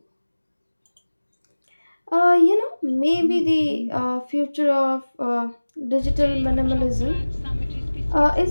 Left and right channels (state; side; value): inverted; both; correlation -1.00